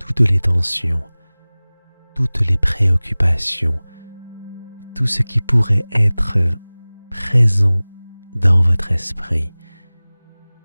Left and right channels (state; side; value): inverted; both; correlation -1.00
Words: les tensions, toutes les préoccupations, tout ce qui pourrait être présent dans votre esprit.